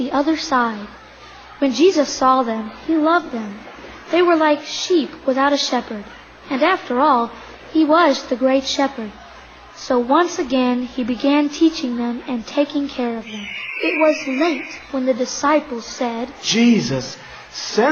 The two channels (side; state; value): both; identical; correlation 1.00